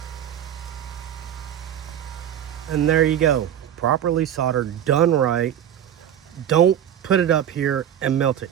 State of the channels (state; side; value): quieter; left; 10.2 dB